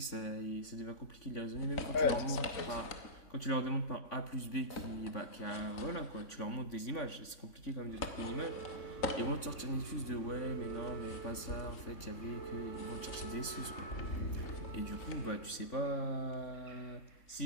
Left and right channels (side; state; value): right; late; 3.5 ms